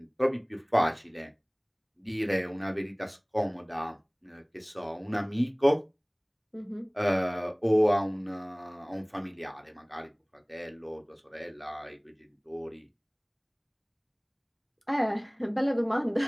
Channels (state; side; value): identical; both; correlation 1.00